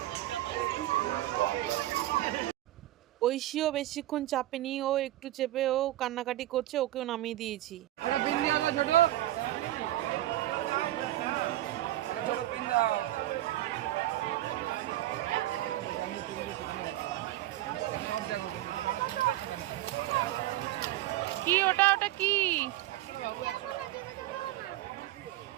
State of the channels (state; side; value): quieter; left; 15.1 dB